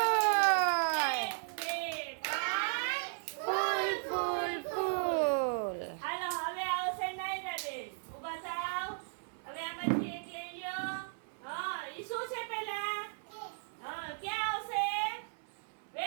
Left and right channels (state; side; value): silent; left; 54 dB below the other